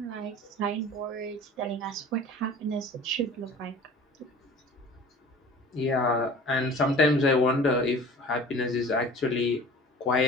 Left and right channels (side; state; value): both; normal; correlation 0.43